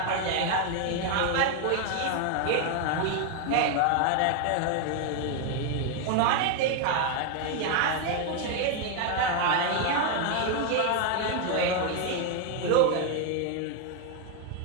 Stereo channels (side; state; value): both; different; correlation 0.01